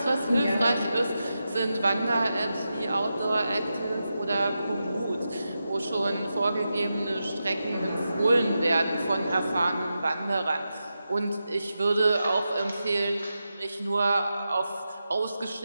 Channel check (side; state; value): both; inverted; correlation -0.89